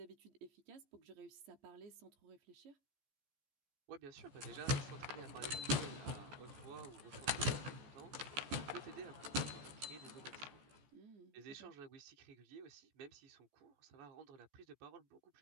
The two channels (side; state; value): left; late; 14 ms